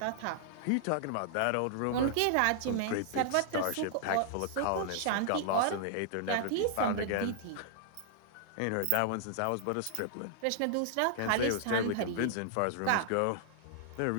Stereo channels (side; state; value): both; different; correlation -0.01